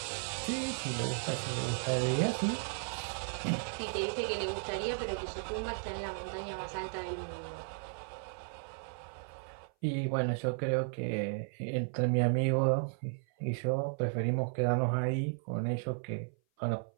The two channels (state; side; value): silent; left; 55 dB below the other